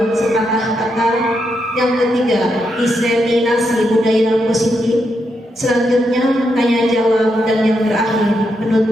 sepatah kata. Yang ketiga, diseminasi budaya positif. Selanjutnya, tanya jawab. Dan yang terakhir,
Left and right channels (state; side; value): normal; both; correlation 0.82